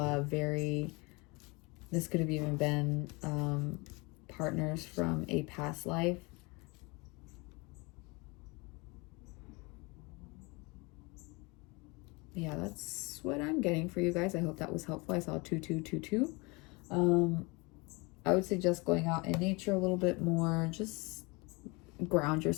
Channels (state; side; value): quieter; right; 27.0 dB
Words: this could have even been partners from a past life. Yeah, that's what I'm getting for you guys. I hope that was helpful. I saw 2222. I would suggest going out in nature a little bit more. Just ground